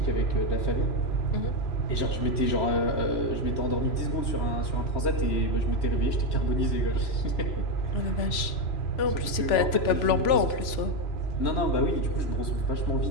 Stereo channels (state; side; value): late; right; 3.0 ms